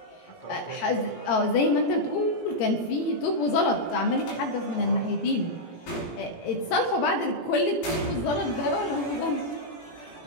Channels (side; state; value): right; late; 17 ms